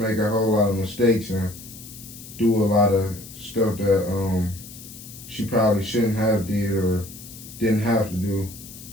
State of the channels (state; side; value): noise; left; hiss, 16 dB below the sound